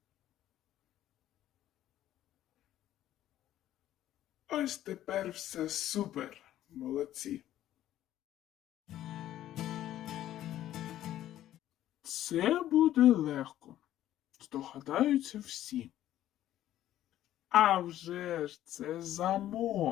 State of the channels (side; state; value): right; quieter; 12.9 dB